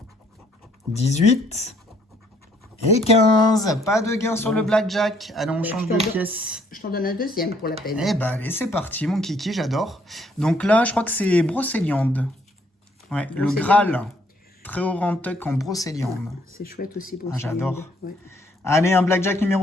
18. Et 15. Pas de gain sur le blackjack. Allez, on change de pièce. Je t'en donne un deuxième pour la peine. Eh ben, allez, c'est parti, mon kiki, j'adore. Donc là, je crois que c'est brocéliande. Ouais, le Brocéliande. Graal. Très haut rentuck en brocéliande. C'est chouette aussi pour Ah, j'adore. Ouais. Allez, un blackjack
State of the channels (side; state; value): both; normal; correlation 0.66